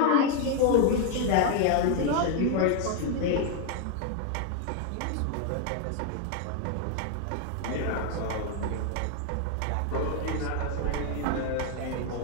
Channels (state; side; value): different; both; correlation 0.01